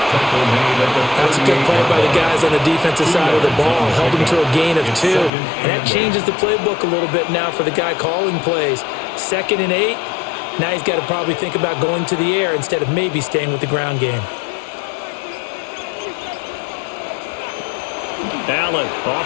That's a good play by the guys on the defensive side of the ball. Held him to a gain of 2. And that changes the playbook a little bit now for the guy calling plays. 2nd and 8. Now he's got to probably think about going to the air instead of maybe staying with the ground game. Allen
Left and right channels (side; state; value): right; drops out; at 5.3 s